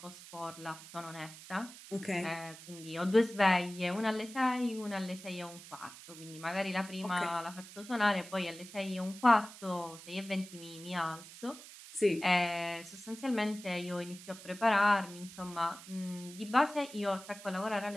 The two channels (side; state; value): right; noise; hiss, 16 dB below the sound